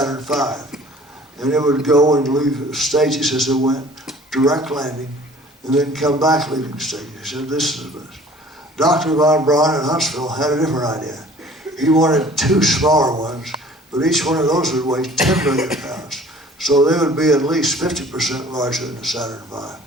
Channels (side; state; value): both; normal; correlation 0.50